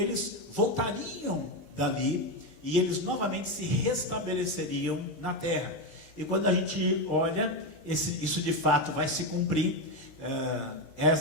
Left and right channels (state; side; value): late; right; 20 ms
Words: voltariam dali e eles novamente se restabeleceriam na terra. E quando a gente olha, isso de fato vai se cumprir.